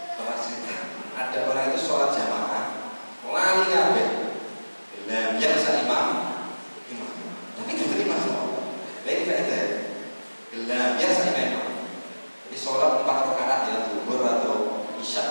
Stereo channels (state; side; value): inverted; both; correlation -1.00